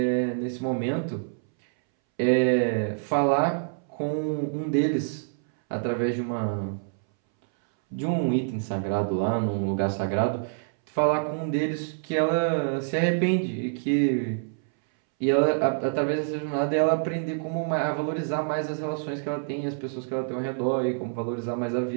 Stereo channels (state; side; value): silent; left; 60 dB below the other